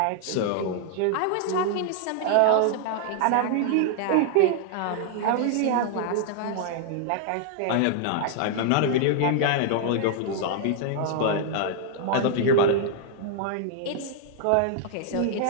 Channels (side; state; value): both; different; correlation -0.01